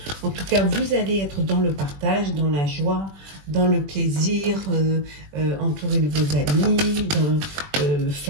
En tout cas, vous allez être dans le partage, dans la joie, dans le plaisir, entouré de vos amis,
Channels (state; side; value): late; left; 21 ms